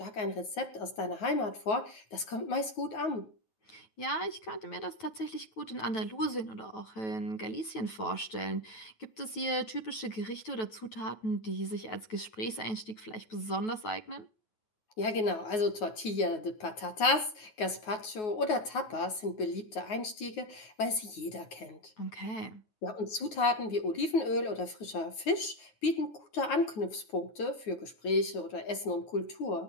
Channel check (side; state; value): right; late; 9.4 ms